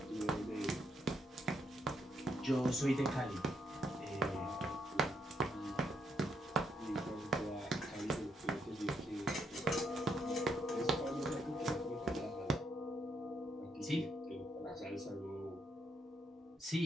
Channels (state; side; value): normal; both; correlation 0.76